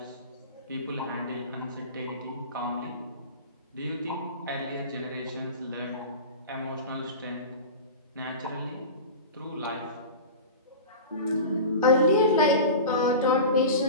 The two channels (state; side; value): inverted; both; correlation -0.31